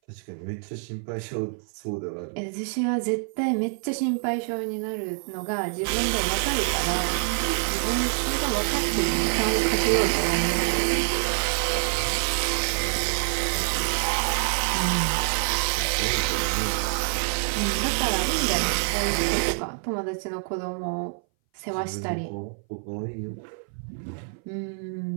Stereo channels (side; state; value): left; silent; 59 dB below the other